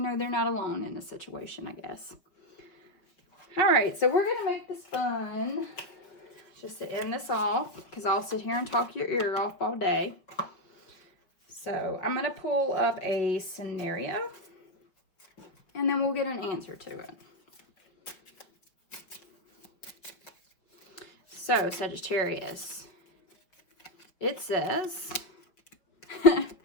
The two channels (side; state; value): right; late; 5.5 ms